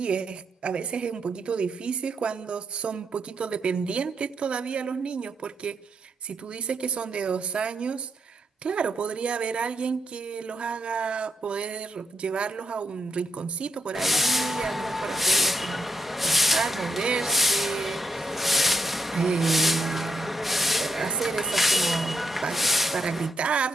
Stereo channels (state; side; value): normal; both; correlation 0.79